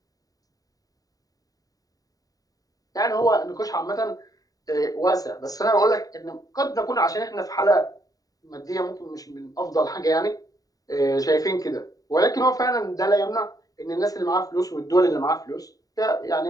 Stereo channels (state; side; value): late; right; 0.18 ms